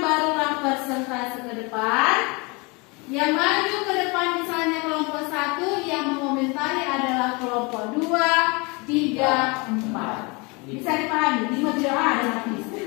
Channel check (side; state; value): right; quieter; 28.3 dB